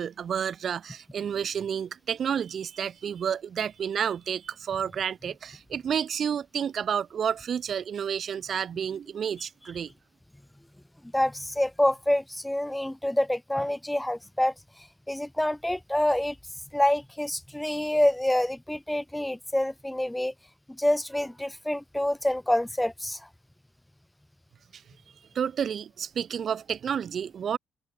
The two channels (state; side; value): normal; both; correlation 0.91